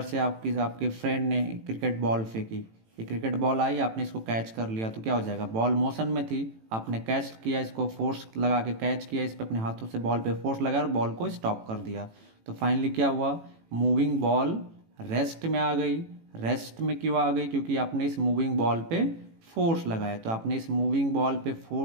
से आपके फ्रेंड ने क्रिकेट बॉल फेंकी, ये क्रिकेट बॉल आई, आपने इसको कैच कर लिया तो क्या हो जाएगा, बॉल मोशन में थी, आपने कैच किया, इसको फोर्स लगा के कैच किया, इस पे अपने हाथों से बॉल पे फोर्स लगाया और बॉल को स्टॉप कर दिया। तो फाइनली क्या हुआ, मूविंग बॉल रेस्ट में आ गई। रेस्ट में क्यों आ गई, क्योंकि आपने इस मूविंग बॉल पे फोर्स लगाया। तो आपने इस मूविंग बॉल पे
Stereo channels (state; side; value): late; left; 18 ms